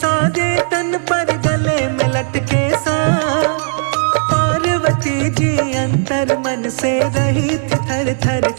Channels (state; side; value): silent; left; digital silence